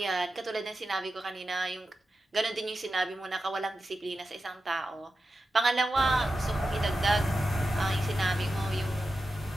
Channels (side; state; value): both; normal; correlation 0.91